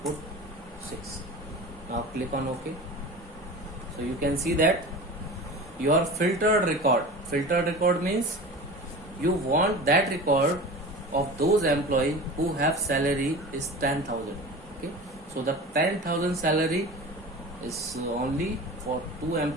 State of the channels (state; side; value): normal; both; correlation 0.34